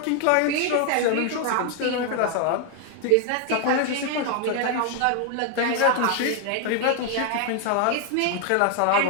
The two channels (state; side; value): different; both; correlation 0.01